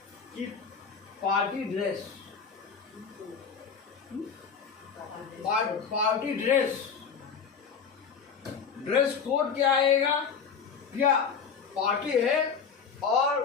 कि party dress, party dress code क्या आएगा, क्या पार्टी है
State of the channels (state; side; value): quieter; right; 6.3 dB